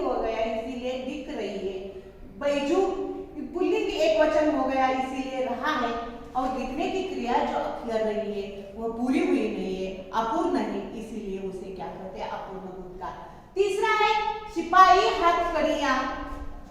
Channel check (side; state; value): both; identical; correlation 1.00